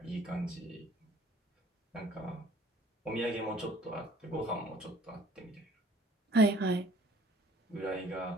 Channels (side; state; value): both; normal; correlation 0.54